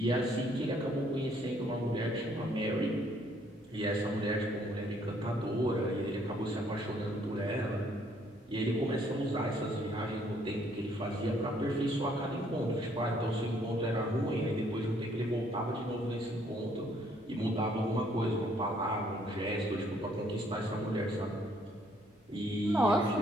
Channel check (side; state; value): both; normal; correlation 0.65